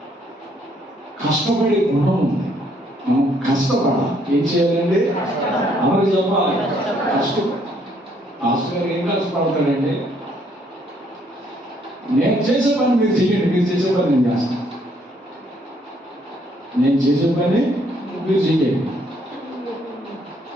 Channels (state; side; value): normal; both; correlation 0.68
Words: కష్టపడే గుణం ఉంది. మనం కష్టపడాలి. ఏం చేయాలండి? అందరికి చెప్పాలి, కష్టపడి. ఆస్కర్ ఏం కష్టపడతాడండి? నేను చేసే పని మీరు చేయండి, మీరు చేసే పని నేను చేస్తాను. నేను చేసే పని మీరు చేయండి,